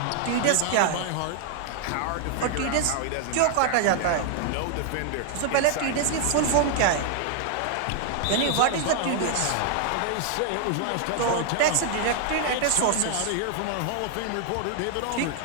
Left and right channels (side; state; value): both; different; correlation 0.00